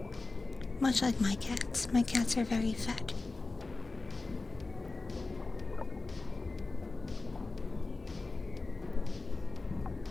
Much like my cats. My cats are very fat.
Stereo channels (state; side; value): quieter; right; 3.5 dB